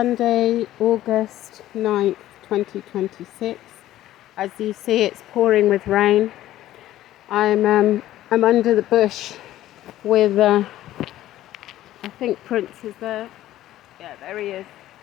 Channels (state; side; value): quieter; right; 14.0 dB